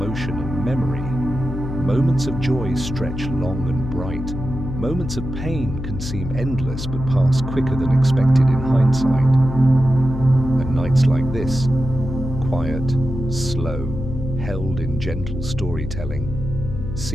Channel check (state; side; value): noise; left; hum, 6 dB below the sound